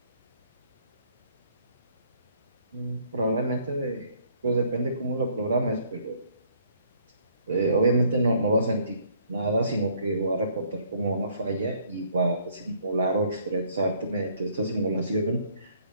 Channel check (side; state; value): both; inverted; correlation -0.63